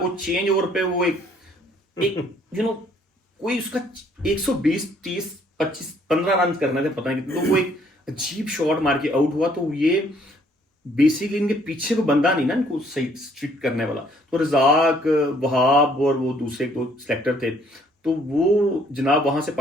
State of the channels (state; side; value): normal; both; correlation 0.63